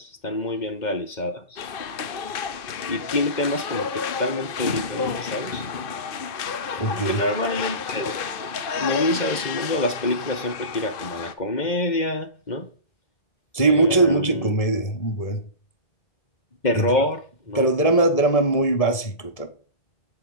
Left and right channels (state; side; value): late; right; 1.7 ms